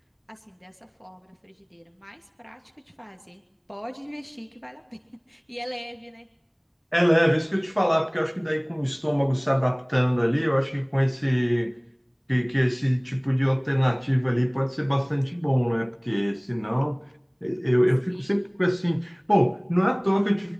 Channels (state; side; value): identical; both; correlation 1.00